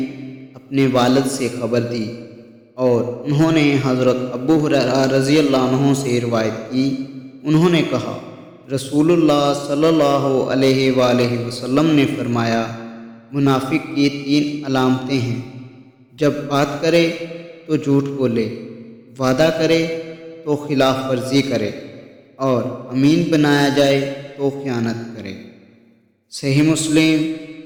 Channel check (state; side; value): identical; both; correlation 1.00